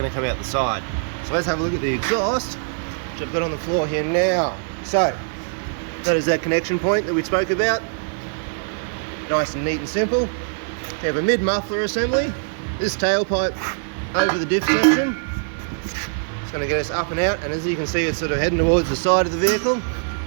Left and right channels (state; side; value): silent; left; digital silence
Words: to come out the side. So let's have a look at the exhaust, which I've got on the floor here now. So that is that connection point that we spoke about. Nice and neat and simple. We have a mid muffler assembly. This tailpipe over the diff section. It's going to get us up and out, and as you can see, it's sort of heading towards the side of the vehicle.